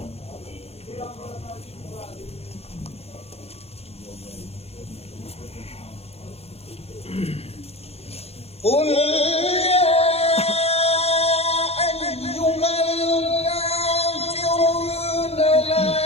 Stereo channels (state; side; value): late; right; 0.29 ms